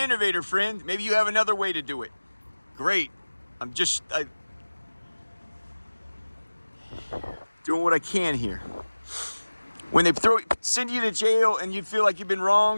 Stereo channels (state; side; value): inverted; both; correlation -1.00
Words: friend. Maybe you have another way to do it. Great. I'm just doing what I can here. When they send you to jail and you feel like you've been